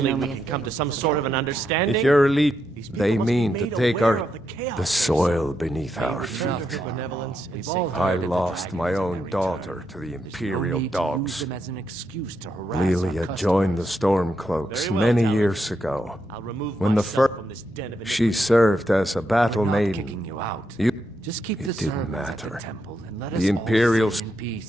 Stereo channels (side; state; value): both; normal; correlation 0.81